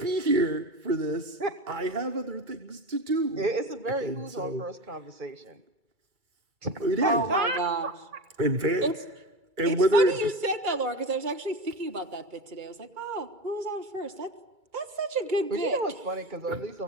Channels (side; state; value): left; late; 2.3 ms